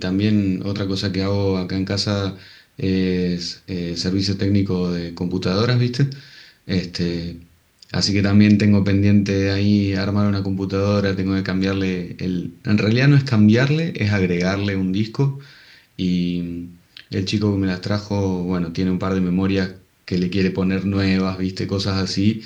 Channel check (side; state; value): both; identical; correlation 1.00